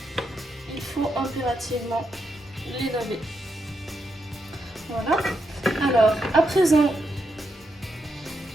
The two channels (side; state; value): both; normal; correlation 0.83